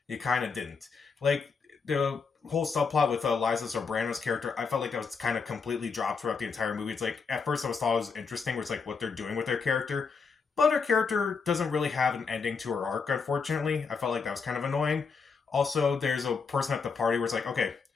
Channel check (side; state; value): right; quieter; 5.3 dB